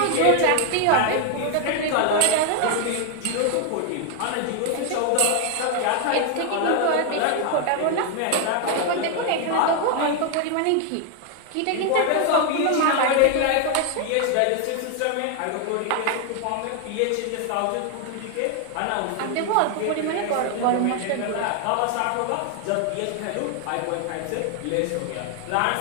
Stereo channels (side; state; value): both; different; correlation 0.01